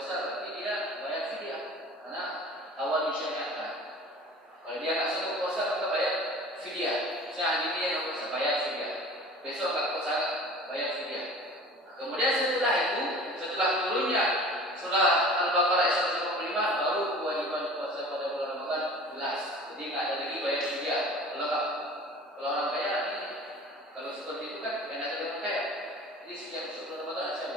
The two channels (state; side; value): normal; both; correlation 0.42